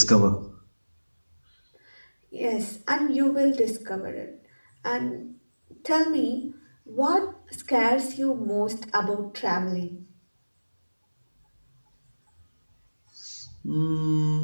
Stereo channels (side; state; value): both; inverted; correlation -1.00